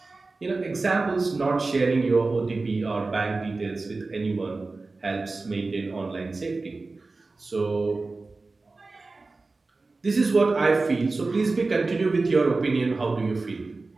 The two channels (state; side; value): quieter; left; 3.6 dB